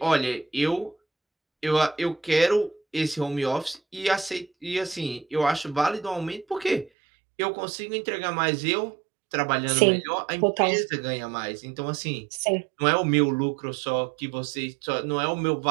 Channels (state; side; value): drops out; left; at 6.9 s